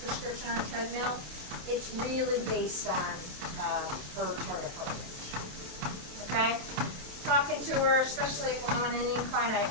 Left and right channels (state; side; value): late; left; 28 ms